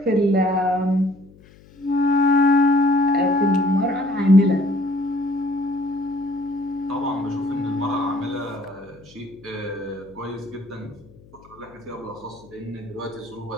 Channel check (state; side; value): noise; left; hum, 25 dB below the sound